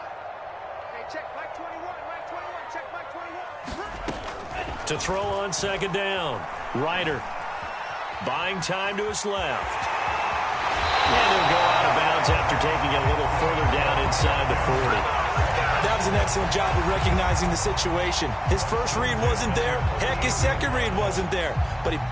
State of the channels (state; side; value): identical; both; correlation 1.00